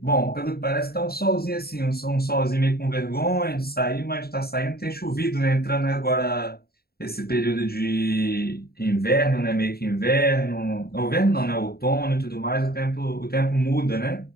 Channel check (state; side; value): late; right; 0.45 ms